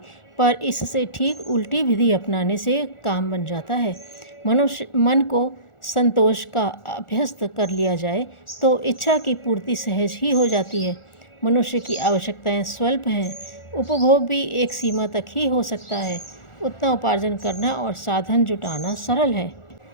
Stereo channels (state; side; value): late; right; 1.4 ms